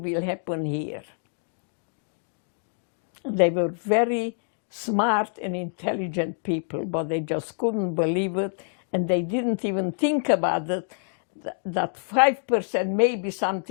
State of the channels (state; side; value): silent; right; digital silence